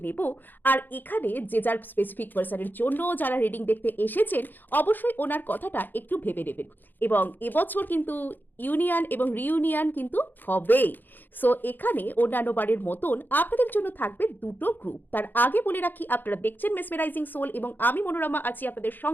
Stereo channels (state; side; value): late; right; 0.089 ms